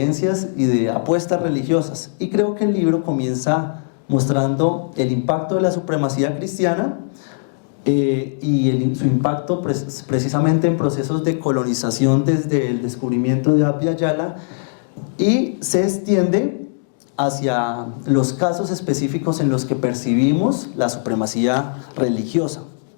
y de apuestas religiosas. Y creo que el libro comienza mostrando el impacto de la supremacía cristiana y su impacto precisamente en procesos de colonización desde el descubrimiento de Abya Yala, y se extiende hacia los casos específicos en los que percibimos la supremacía religiosa.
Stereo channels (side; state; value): right; silent; digital silence